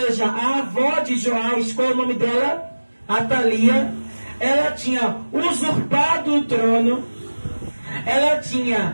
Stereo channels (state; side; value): inverted; both; correlation -1.00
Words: a avó de Joás, qual é o nome dela? Atalia. Ela tinha usurpado o trono, ela